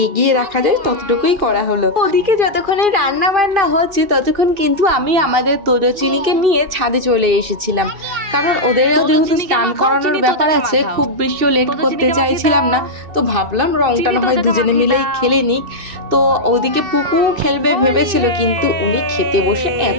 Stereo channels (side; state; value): left; late; 2.6 ms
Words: এগিয়ে রাখা যায় ততটুকুই করা হলো। ওদিকে যতক্ষণে রান্না বান্না হচ্ছে ততক্ষণ কিন্তু আমি আমাদের তোজচিনিকে নিয়ে ছাদে চলে এসেছিলাম, কারণ ওদের যেহেতু স্নান করানোর ব্যাপার আছে, খুব বেশিও লেট করতে চাইছিলাম না। তো ভাবলাম রংটা না হয় দুজনে মিলেই খেলে নিক। তো ওদিকে পুকু খেলবে ভেবেছিল, কিন্তু উনি খেতে বসে